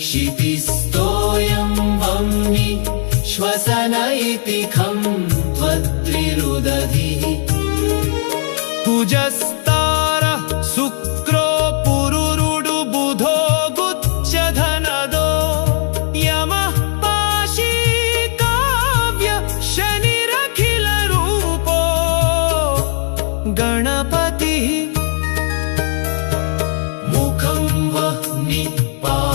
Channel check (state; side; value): silent; right; digital silence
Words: क्षितिस्थोऽयं वह्नि श्वसन इति खं त्वद्विरुदधिः कुजस्तारः शुक्रो पुरुरुडु बुधो गुच्छधनदो यमः पाशी काव्य शनिरखिलरूपो गणपतिः मुखं वह्नि